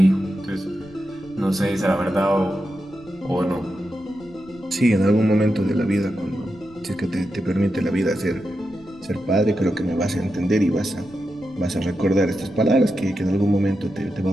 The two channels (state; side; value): noise; left; rumble, 24 dB below the sound